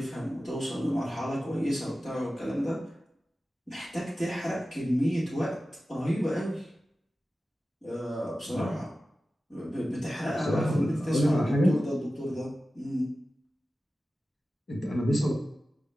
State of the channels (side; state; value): both; normal; correlation 0.95